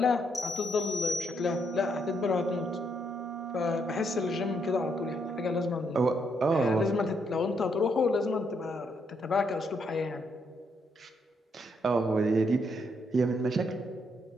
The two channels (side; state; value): both; normal; correlation 0.75